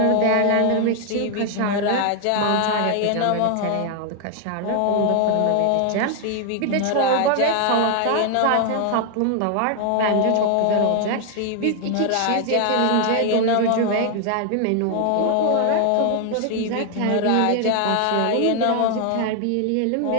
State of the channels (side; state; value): both; different; correlation 0.00